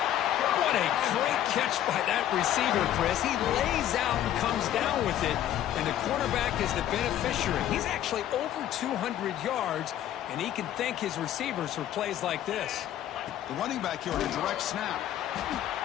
What a great catch by that receiver, Chris. He lays out and comes down with it, and the quarterback is the beneficiary. He's actually over 200 yards, and he can thank his receivers for plays like this. The running back here on a direct snap.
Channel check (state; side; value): quieter; right; 11.8 dB